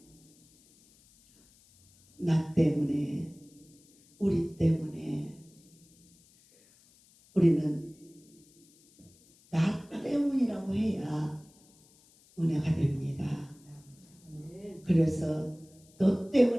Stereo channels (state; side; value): noise; left; hiss, 29 dB below the sound